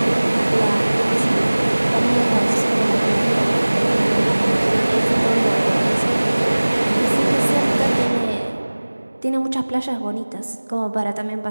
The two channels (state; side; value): inverted; both; correlation -1.00